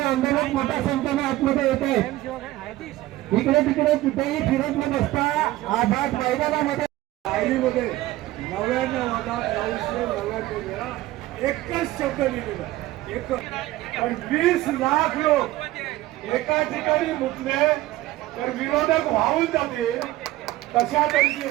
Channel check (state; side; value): quieter; left; 16.7 dB